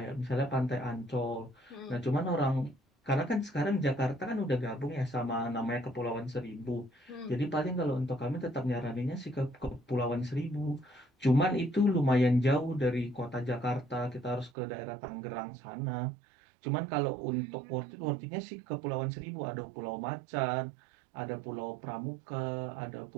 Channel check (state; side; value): drops out; left; at 14.5 s